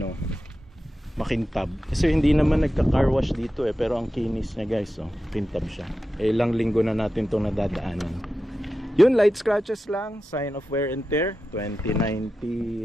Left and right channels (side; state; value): both; normal; correlation 0.92